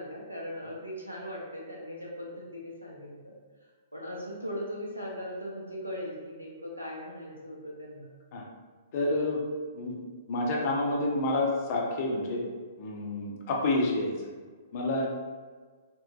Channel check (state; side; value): inverted; both; correlation -0.53